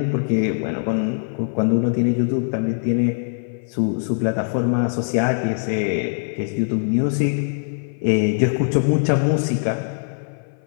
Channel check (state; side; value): silent; right; 56 dB below the other